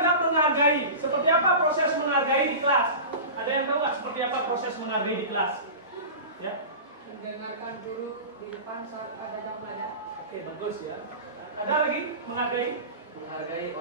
menghargai. Seperti apa proses menghargai di kelas? Ada yang tahu nggak seperti apa proses menghargai di kelas? Ya. Mendengarkan guru di depan saat ada yang belajar. Oke, bagus ya. Ada lagi menghargai? Menghargai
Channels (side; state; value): both; inverted; correlation -0.31